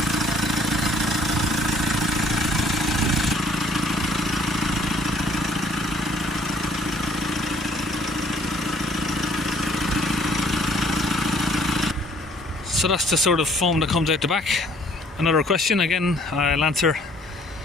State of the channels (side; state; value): both; normal; correlation 0.60